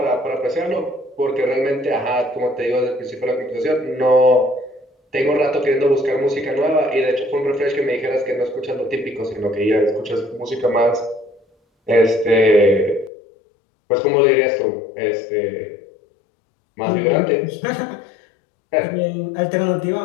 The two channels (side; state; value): right; drops out; at 13.1 s